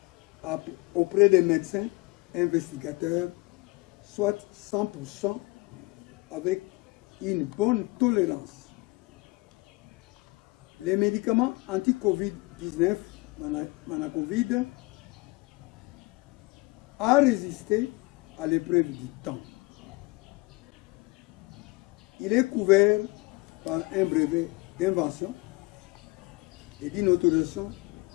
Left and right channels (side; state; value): right; quieter; 24.8 dB